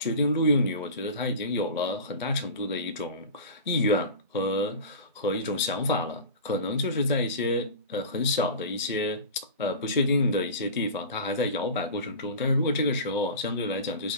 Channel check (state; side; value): inverted; both; correlation -0.32